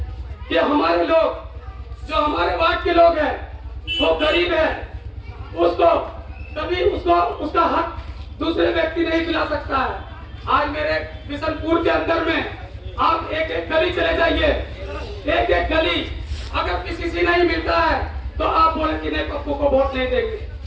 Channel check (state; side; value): identical; both; correlation 1.00